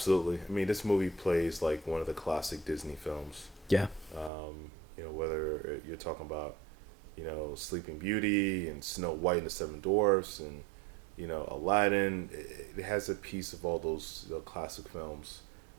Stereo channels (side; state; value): left; drops out; at 4.3 s